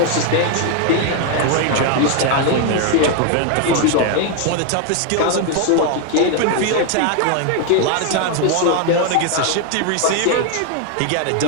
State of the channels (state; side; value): different; both; correlation 0.01